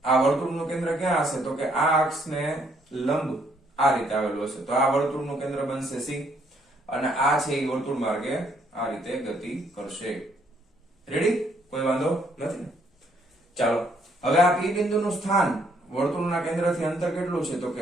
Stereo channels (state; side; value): normal; both; correlation 0.69